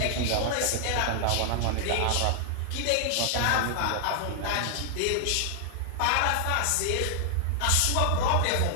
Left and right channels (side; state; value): both; different; correlation -0.01